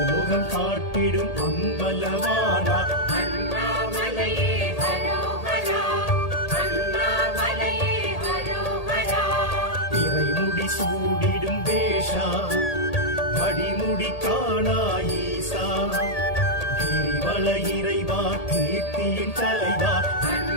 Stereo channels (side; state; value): right; late; 1.8 ms